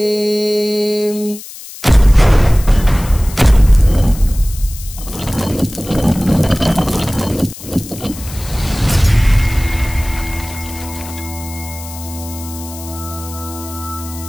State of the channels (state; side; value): noise; left; hiss, 15 dB below the sound